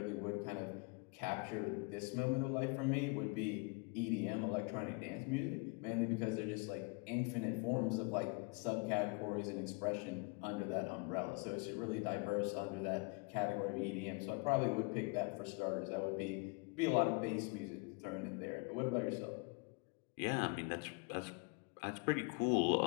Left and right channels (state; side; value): quieter; right; 32.1 dB